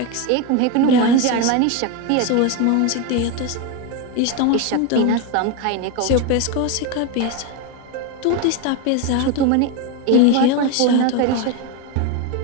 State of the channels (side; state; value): both; different; correlation 0.03